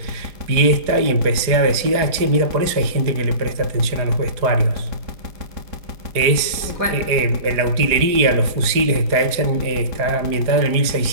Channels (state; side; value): late; left; 4.8 ms